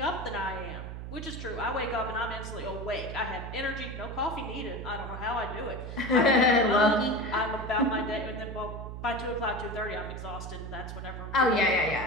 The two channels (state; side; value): noise; right; hum, 8 dB below the sound